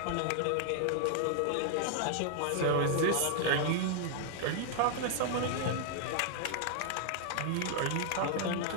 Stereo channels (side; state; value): both; different; correlation 0.00